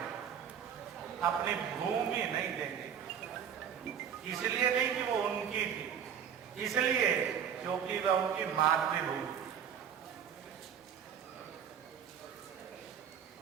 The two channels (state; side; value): quieter; left; 8.3 dB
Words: अपनी भूमि नहीं देंगे। इसलिए नहीं कि वो उनकी थी, इसलिए क्योंकि वह उनकी मातृभूमि।